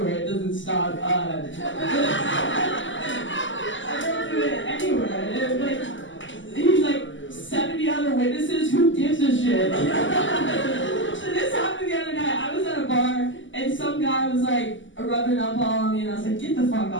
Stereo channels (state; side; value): late; right; 0.55 ms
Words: It doesn't stop. I don't do it anywhere. He's like 70 other witnesses. Who gives a shit? So this happened the other night. I was at a bar and some guy was like rubbing up on me, and I was like, get the fuck